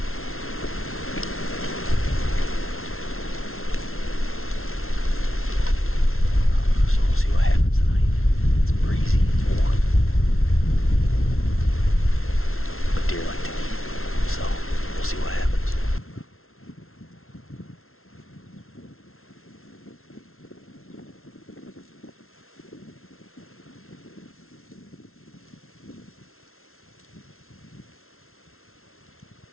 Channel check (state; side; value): late; right; 0.62 ms